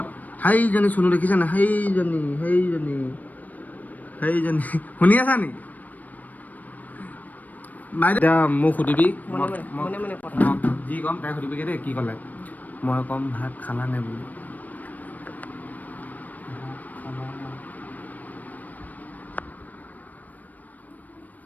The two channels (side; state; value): right; late; 0.080 ms